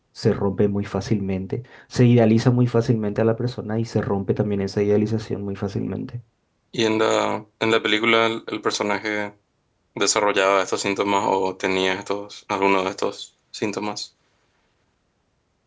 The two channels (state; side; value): identical; both; correlation 1.00